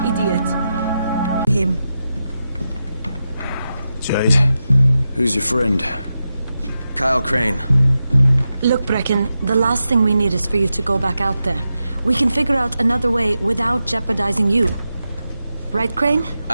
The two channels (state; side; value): inverted; both; correlation -0.89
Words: idiot! Him. Jade, who's your friend? Kyle Crane. Look, Brecken, the last thing we need is for you to go back out there. We can figure out another way without jeopardizing you. Right, Crane?